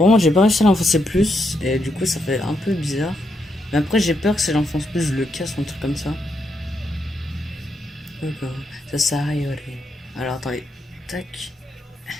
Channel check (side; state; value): both; normal; correlation 0.80